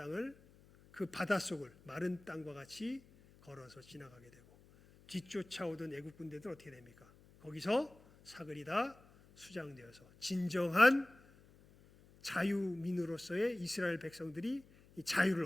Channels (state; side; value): noise; left; hum, 25 dB below the sound